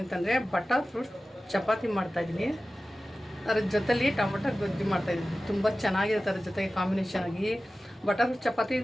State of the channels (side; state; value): both; normal; correlation 0.96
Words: ಅಂತಂದರೆ ಬಟರ್ ಫ್ರೂಟ್ಸ್ ಚಪಾತಿ ಮಾಡ್ತಾಯಿದ್ದೀನಿ. ಅದ್ರ ಜೊತೆಲಿ ಟೊಮೊಟೊ ಗೊಜ್ಜು ಮಾಡ್ತಾಯಿದ್ದೀನಿ. ತುಂಬ ಚೆನ್ನಾಗಿರುತ್ತೆ ಅದ್ರ ಜೊತೆಗೆ ಕಾಂಬಿನೇಷನ್ ಆಗಿ. ಬಟರ್ ಫ್ರೂಟ್ಸ್ ಚಪಾತಿ